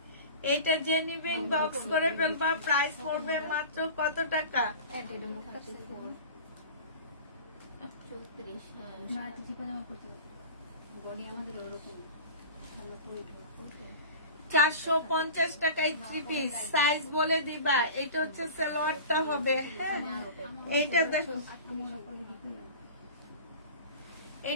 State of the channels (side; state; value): both; inverted; correlation -0.36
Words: এটা যে নিবেন বক্স করে ফেলবা। প্রাইস পড়বে মাত্র কত টাকা? 450 টাকায় 3 পিস। সাইজ বলে দিবা। এটা হচ্ছে সালোয়ারটা হবে। হ্যাঁ, এইটা দেখো,